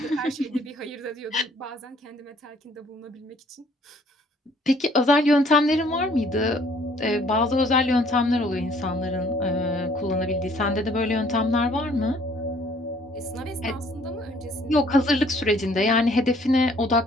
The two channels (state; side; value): normal; both; correlation 0.59